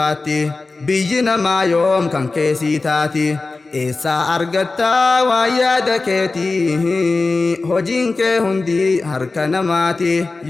بيجنا ما يوم كان كيسي تاتي إسا أرغتا ويادا كيتي هجين كي هندي هركا نماتي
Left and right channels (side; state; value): right; quieter; 3.6 dB